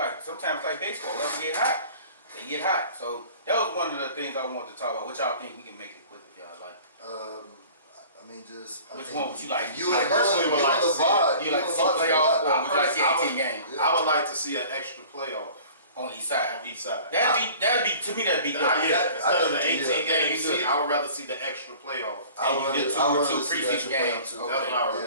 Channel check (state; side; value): inverted; both; correlation -0.45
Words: sometimes like baseball, they get hot. They get hot. So that was one of the things I wanted to talk about. What y'all think? We can make it quick if y'all like. I mean, just. Which one would you like? You I personally would like to see it. You like to see playoff or would you like to see 18 games I would like to see an extra playoff on each side? on each side. That'd be to me that'd be good. Instead of the 18 yeah. game Yeah. season, I would rather see the extra playoff. I would And you rather get two see the extra preseason playoff games. too. Okay. That's what I would rather.